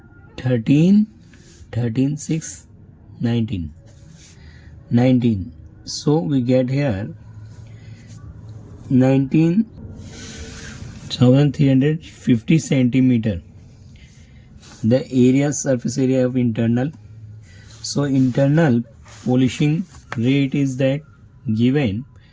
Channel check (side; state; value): both; identical; correlation 1.00